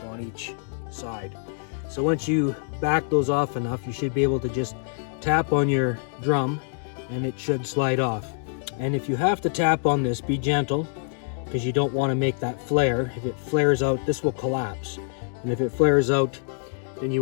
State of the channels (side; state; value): right; silent; digital silence